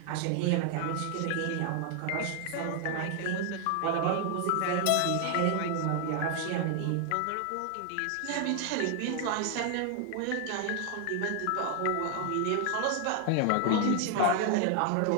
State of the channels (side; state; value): both; different; correlation 0.00